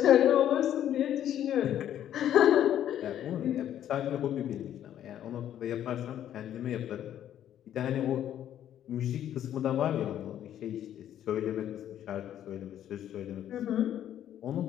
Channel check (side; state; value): right; quieter; 10.9 dB